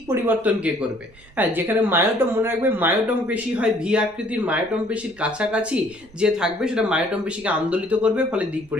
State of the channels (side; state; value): right; noise; rumble, 25 dB below the sound